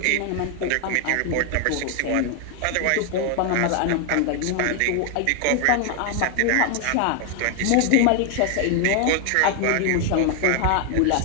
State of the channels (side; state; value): both; different; correlation 0.00